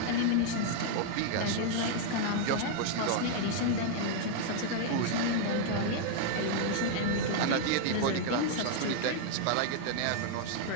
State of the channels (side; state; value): both; different; correlation -0.01